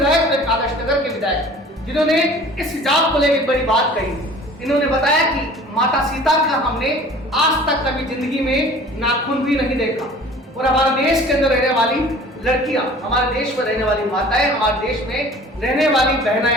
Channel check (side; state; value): both; normal; correlation 0.46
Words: और एक आदर्श नगर के विधायक, जिन्होंने इस हिजाब को लेकर बड़ी बात कही। इन्होंने बताया कि माता सीता का हमने आज तक कभी जिंदगी में नाखून भी नहीं देखा और हमारे देश के अंदर रहने वाली लड़कियां, हमारे देश में रहने वाली माताएं, हमारे देश में रहने वाली